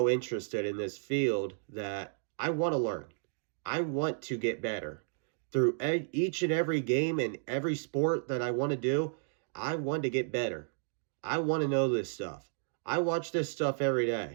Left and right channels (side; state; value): left; silent; digital silence